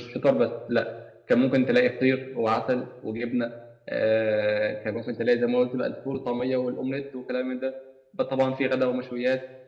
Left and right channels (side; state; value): both; identical; correlation 1.00